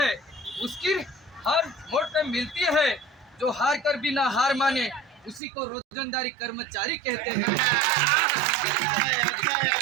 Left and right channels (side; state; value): left; drops out; at 5.4 s